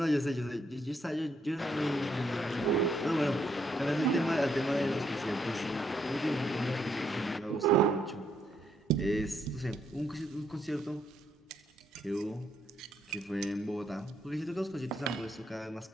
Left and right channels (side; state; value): both; normal; correlation 0.74